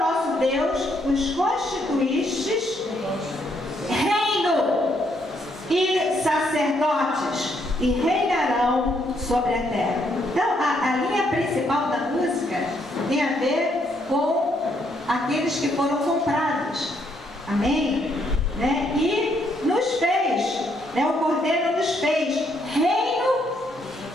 Deus, os constituístes reino e sacerdotes, e reinarão sobre a terra. Então, a linha principal da música tem a ver com aqueles que foram comprados. Amém? Né? E nos fez, né? O Cordeiro nos fez reino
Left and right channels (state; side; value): normal; both; correlation 0.73